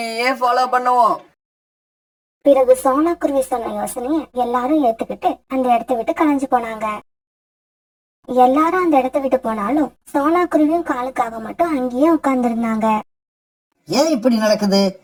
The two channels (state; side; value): identical; both; correlation 1.00